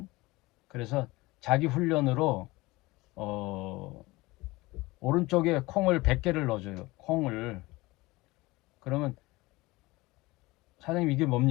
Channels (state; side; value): quieter; right; 21.2 dB